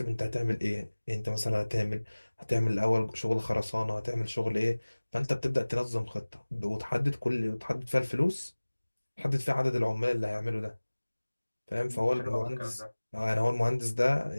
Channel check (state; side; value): inverted; both; correlation -1.00